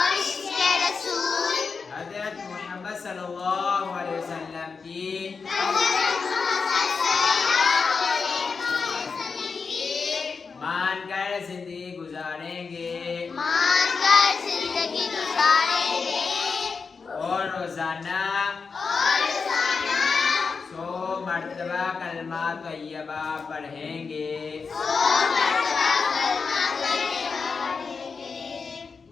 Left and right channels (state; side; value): quieter; right; 5.1 dB